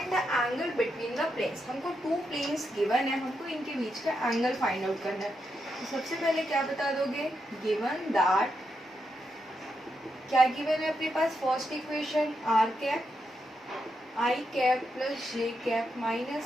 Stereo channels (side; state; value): both; normal; correlation 0.83